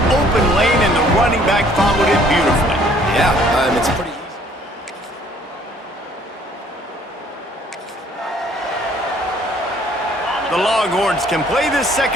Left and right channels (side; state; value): both; normal; correlation 0.59